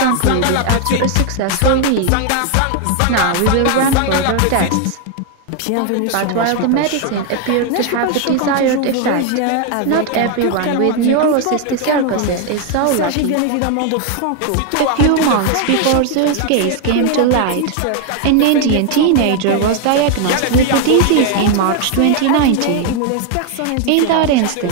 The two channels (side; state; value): both; different; correlation 0.01